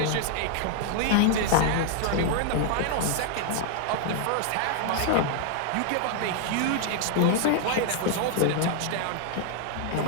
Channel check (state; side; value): different; both; correlation 0.00